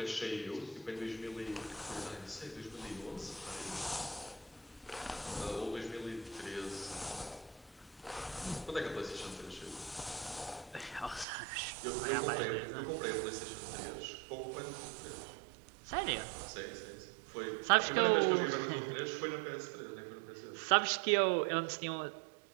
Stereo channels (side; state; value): left; drops out; at 11.2 s